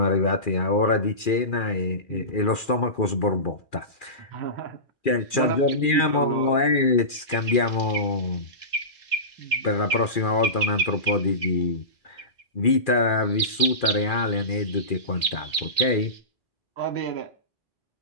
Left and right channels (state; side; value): late; right; 2.4 ms